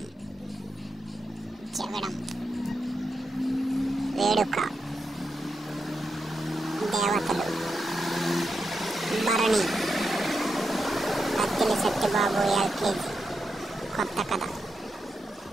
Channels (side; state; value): both; normal; correlation 0.86